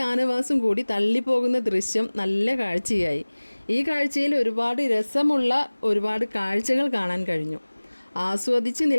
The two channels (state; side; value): inverted; both; correlation -1.00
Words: കൂടി തള്ളിപ്പോകുന്ന ദൃശ്യം നല്ല കാഴ്ചയായി. ഈ കാഴ്ചയിൽ ഒരുപാട് രസമുള്ള ഒരുപാട് കാഴ്ചകൾ കാണാൻ കഴിഞ്ഞു. ആസ്വദിച്ച്